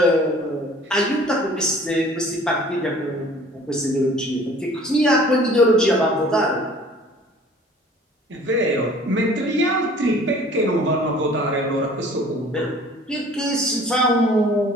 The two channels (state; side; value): normal; both; correlation 0.50